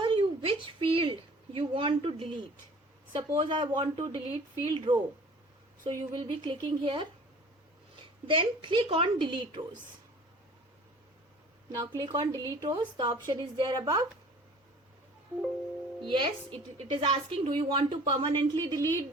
field you want to delete. Suppose I want to delete field row. So you will be clicking here. Then click on delete rows. Now click on delete rows. The option is there above. Yes, it is asking, do you want to permanently delete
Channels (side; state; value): both; normal; correlation 0.47